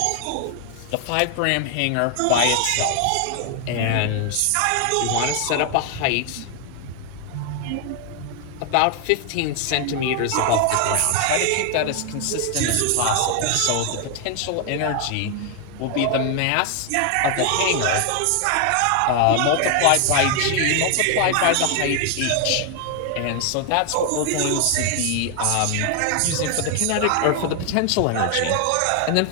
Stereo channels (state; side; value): different; both; correlation 0.00